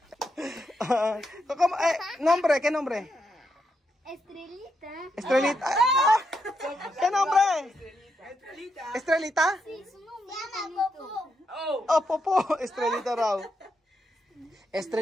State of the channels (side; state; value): both; normal; correlation 0.81